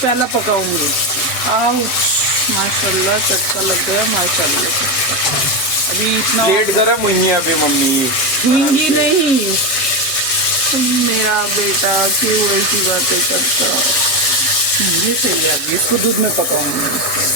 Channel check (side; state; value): right; late; 7.7 ms